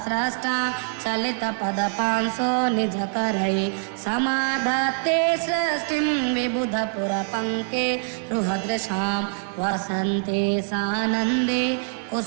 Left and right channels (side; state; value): left; silent; 62 dB below the other